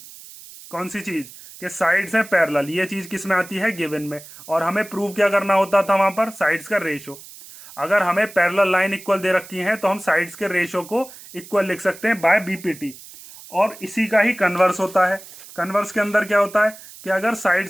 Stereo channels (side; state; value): right; noise; hiss, 18 dB below the sound